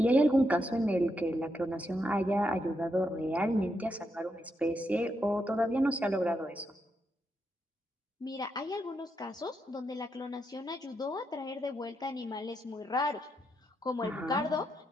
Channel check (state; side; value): normal; both; correlation 0.82